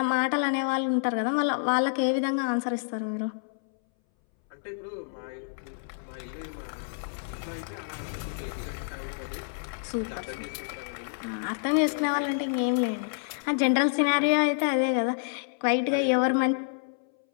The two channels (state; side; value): silent; right; 59 dB below the other